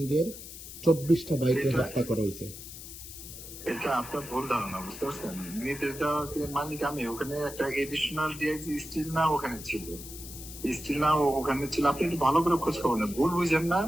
24টা বাইকে হত্যা করা হয়েছে। এটা আপনার ভুল ধারণা, বুঝতে পারছেন? নির্দেশ দেওয়ার মালিক আমি। ওখানে একটা এডিশনাল ডিআইজি স্টিল না ওখানে ছিল, স্টিল না ওখানে ছিল। আপনি একটু ভালো করে খোঁজ খবর নেন, ভুল বুঝেন না।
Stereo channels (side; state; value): left; noise; hiss, 13 dB below the sound